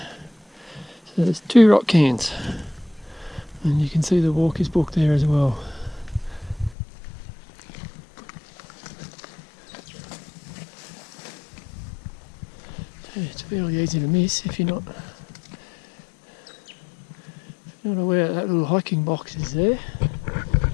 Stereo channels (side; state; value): right; drops out; at 6.8 s